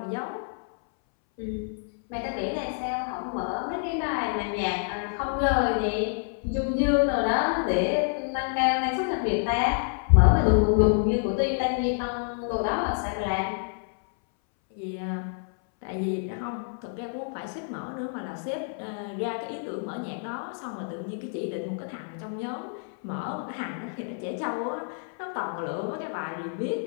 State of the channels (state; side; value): silent; right; 59 dB below the other